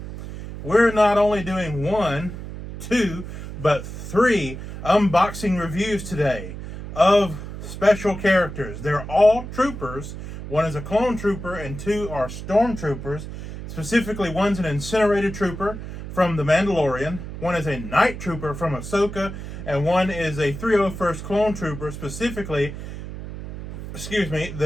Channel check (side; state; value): right; noise; hum, 9 dB below the sound